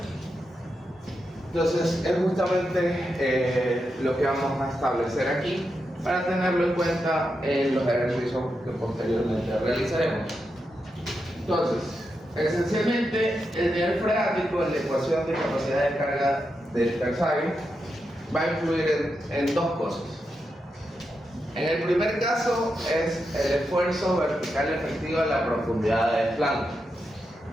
Entonces es justamente lo que vamos a establecer aquí para tenerlo en cuenta en los ejercicios que posteriormente realizaremos. Entonces, esencialmente el nivel freático en la ecuación de capacidad de carga del Tersaghi va a influir en dos cosas. En el primer caso es el esfuerzo vertical efectivo de la profundidad de desplante.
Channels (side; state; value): both; normal; correlation 0.86